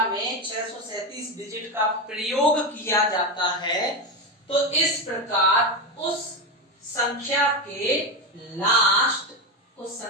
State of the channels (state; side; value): normal; both; correlation 0.15